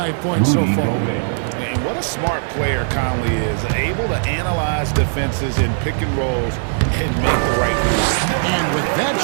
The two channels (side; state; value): left; silent; digital silence